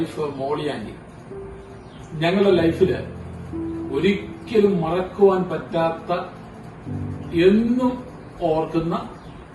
മോളി ആന്റി ഞങ്ങളുടെ ലൈഫില് ഒരിക്കലും മറക്കുവാൻ പറ്റാത്ത, എന്നും ഓർക്കുന്ന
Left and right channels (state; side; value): identical; both; correlation 1.00